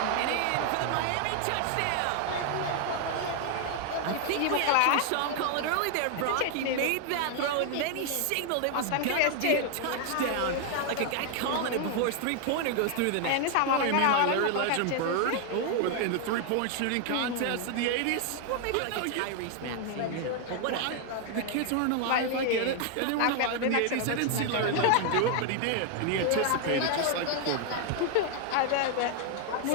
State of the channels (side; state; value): both; different; correlation 0.00